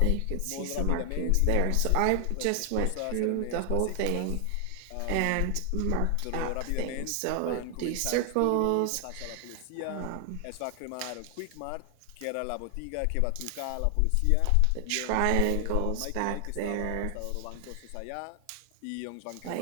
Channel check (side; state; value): both; different; correlation 0.00